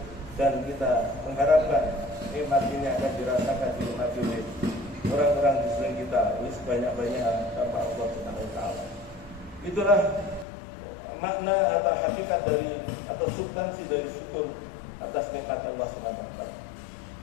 dan kita mengharapkan nikmat ini akan dirasakan dinikmati oleh orang-orang di sekeliling kita ini sebanyak-banyak tanpa Allah Subhanahu wa taala. Itulah makna atau hakikat dari atau substansi dari syukur atas nikmat Allah Subhanahu wa taala.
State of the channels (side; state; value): right; drops out; at 10.5 s